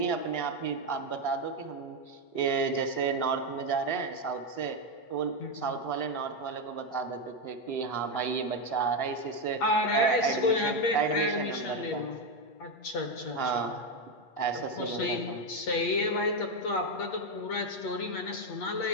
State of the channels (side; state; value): right; late; 8.4 ms